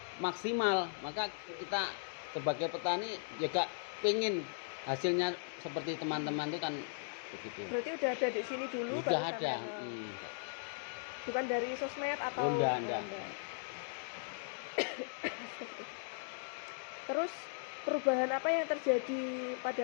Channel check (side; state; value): right; silent; digital silence